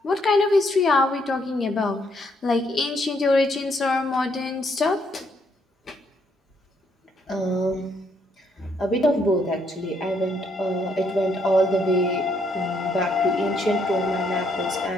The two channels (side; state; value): both; normal; correlation 0.72